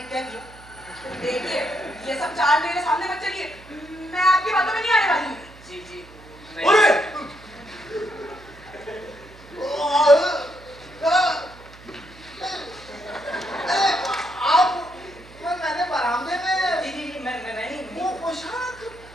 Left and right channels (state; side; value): noise; right; hum, 21 dB below the sound